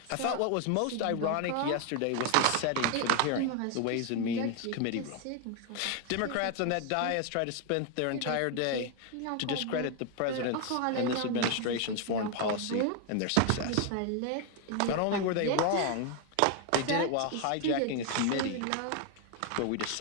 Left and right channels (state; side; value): different; both; correlation 0.00